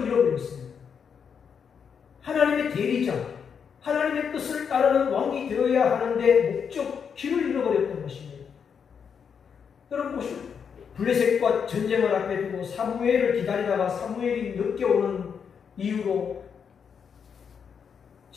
잃어버렸습니다. 하나님의 대리자, 하나님의 뜻을 따르는 왕이 되어야 하는데 목적, 길을 잃어버렸던 것입니다. 여러분 보시오. 블레셋과 전쟁을 앞에 두고 사무엘을 기다리다가 사무엘이 늦게 오는 이유로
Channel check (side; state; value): right; quieter; 6.9 dB